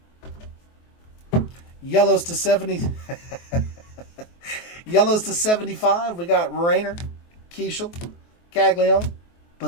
Yellows to 70. Yellows to 75. We got Rayner, Keishel, Caglione,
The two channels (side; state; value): right; late; 23 ms